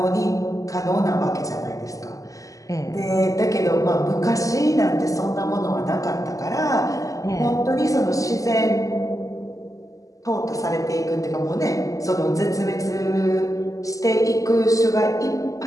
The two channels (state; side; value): late; right; 0.16 ms